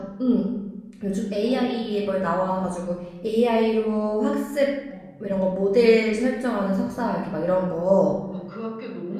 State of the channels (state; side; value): identical; both; correlation 1.00